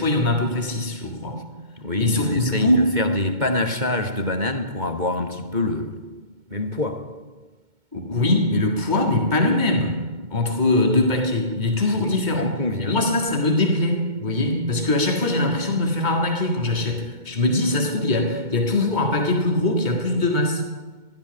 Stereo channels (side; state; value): left; late; 2.2 ms